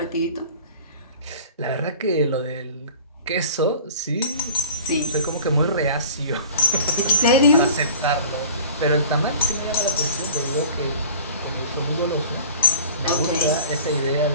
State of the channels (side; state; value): both; inverted; correlation -0.43